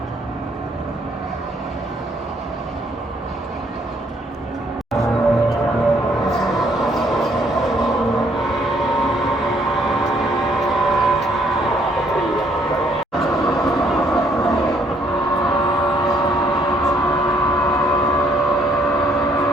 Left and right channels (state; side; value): normal; both; correlation 0.67